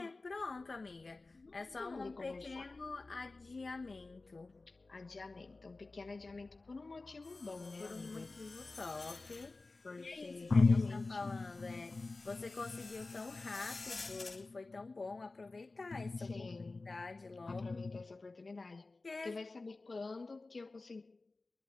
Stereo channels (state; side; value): quieter; right; 3.5 dB